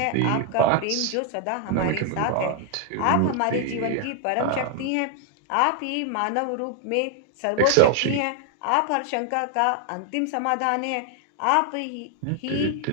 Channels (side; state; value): both; different; correlation 0.00